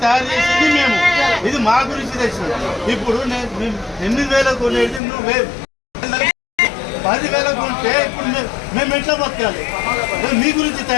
చేసింది మేము, ఇది మా గురించి తెచ్చింది. ఇప్పుడు 8,000 కొనేది నువ్వు 10,000 కొంటే ఇప్పుడు మేము ఎట్లా బతకాలి? మీ గురించి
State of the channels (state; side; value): drops out; right; at 5.0 s